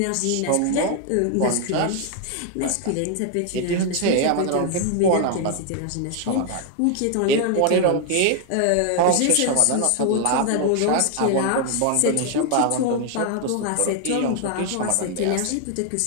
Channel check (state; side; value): different; both; correlation 0.00